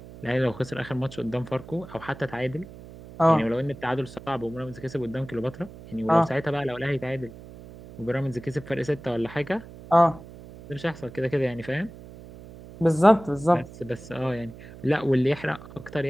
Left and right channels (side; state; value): right; noise; hum, 17 dB below the sound